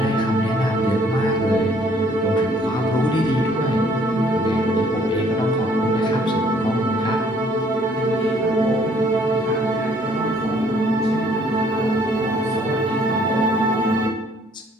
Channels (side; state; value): both; normal; correlation 0.62